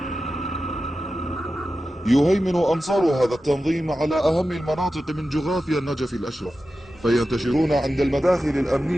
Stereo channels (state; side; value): normal; both; correlation 0.93